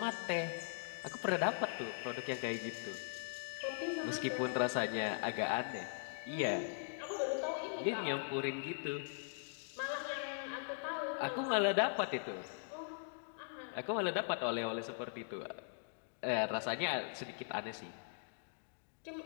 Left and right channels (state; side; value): silent; right; digital silence